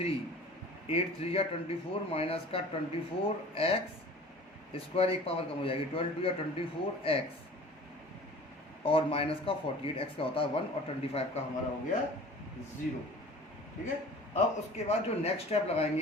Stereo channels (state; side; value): normal; both; correlation 0.44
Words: 8 3 या 24 माइनस का 24x स्क्वायर, एक पावर कम हो जाएगी, 12 2 या 24x और माइनस का 48x का होता है 1 और 25 का हमारा हो गया 0। ठीक है। अब उसके बाद जो नेक्स्ट स्टेप